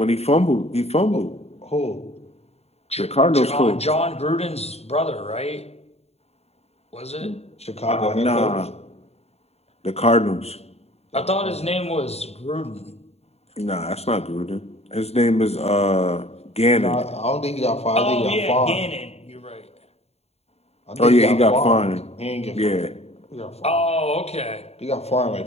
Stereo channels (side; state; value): right; late; 0.30 ms